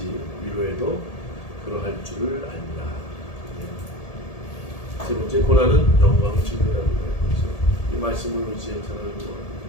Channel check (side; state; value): right; late; 1.8 ms